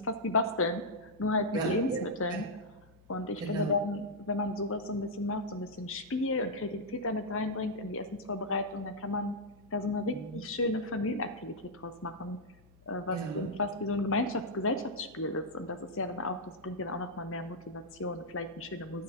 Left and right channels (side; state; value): left; noise; hum, 27 dB below the sound